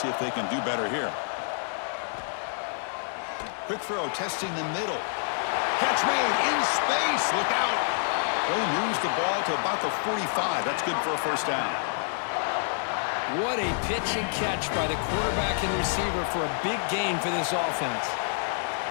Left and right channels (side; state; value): right; silent; digital silence